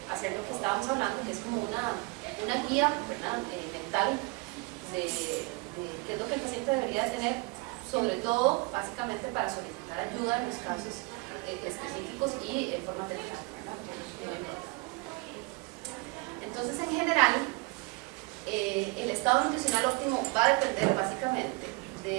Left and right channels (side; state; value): left; quieter; 26.7 dB